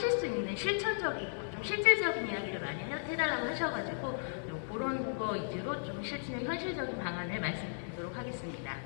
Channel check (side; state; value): right; silent; digital silence